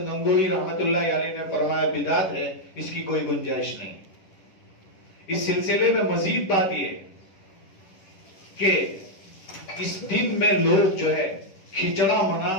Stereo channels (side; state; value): right; late; 10 ms